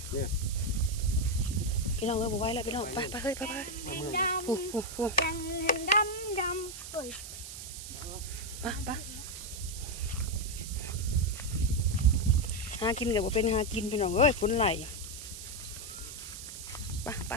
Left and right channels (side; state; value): right; noise; hiss, 10 dB below the sound